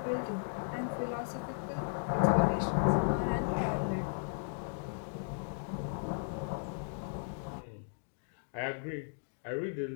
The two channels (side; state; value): right; silent; digital silence